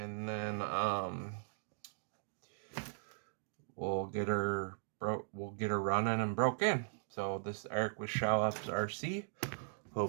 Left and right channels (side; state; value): left; silent; digital silence